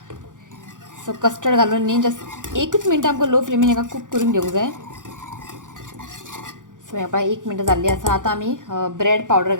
सो कस्टर्ड घालून न्ही जस्ट 1 मिनट आमकां लो फ्लेमीन हाका कूक करून घेवंक जाय. सो ह्या पळय 1 मिनट जाल्ली आसा. आतां आमी ब्रेड पावडर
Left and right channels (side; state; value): left; late; 0.87 ms